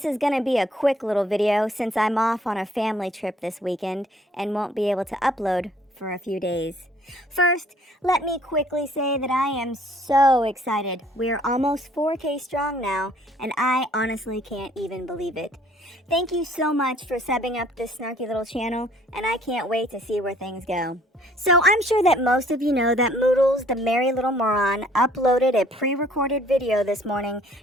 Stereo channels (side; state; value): both; normal; correlation 0.59